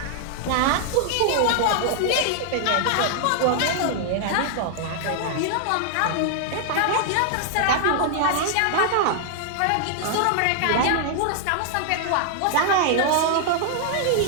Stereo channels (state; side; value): different; both; correlation 0.00